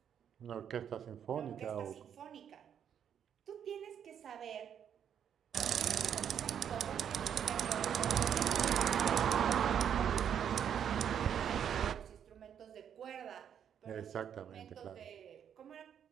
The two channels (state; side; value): quieter; left; 8.7 dB